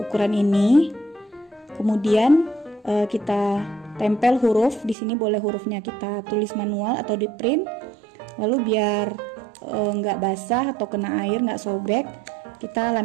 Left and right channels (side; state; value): left; drops out; at 5.0 s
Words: ini. Kemudian kita tempel huruf. Di sini boleh hurufnya kita tulis manual atau di print. Lalu biar nggak basah atau kena air, nggak sobek, kita